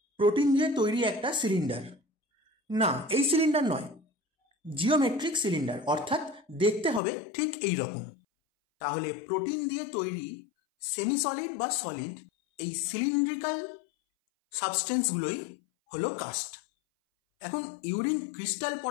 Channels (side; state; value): right; drops out; at 7.0 s